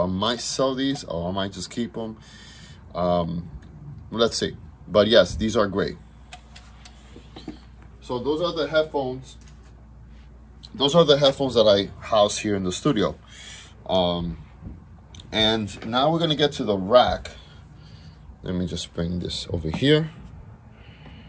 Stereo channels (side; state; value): both; identical; correlation 1.00